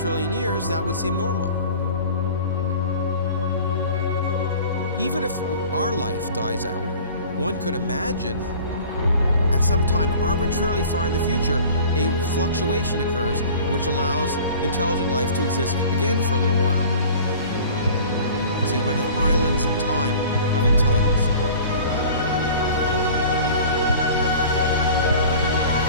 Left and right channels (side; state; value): both; inverted; correlation -0.44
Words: years, that would seem normal. Even if our life dies out, one could imagine at some time arbitrarily far in the future, a fluctuation occurs which allows intelligent life to exist again for a little while. So you might have islands in time of intelligence.